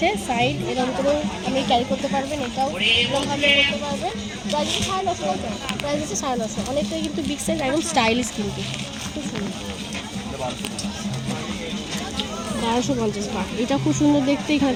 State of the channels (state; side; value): identical; both; correlation 1.00